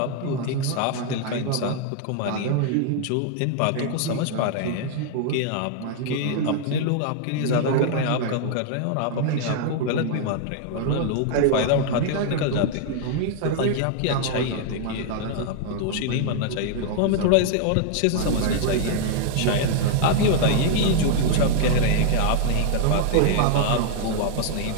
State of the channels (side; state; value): both; different; correlation 0.00